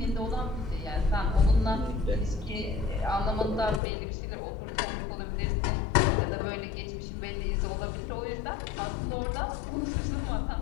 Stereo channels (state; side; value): drops out; right; at 3.8 s